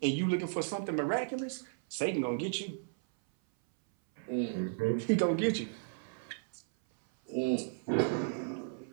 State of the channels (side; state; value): left; silent; 55 dB below the other